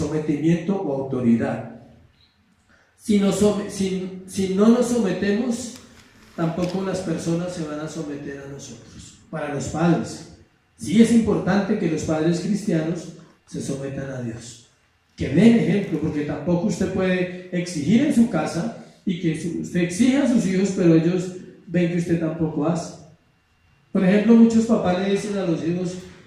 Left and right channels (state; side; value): identical; both; correlation 1.00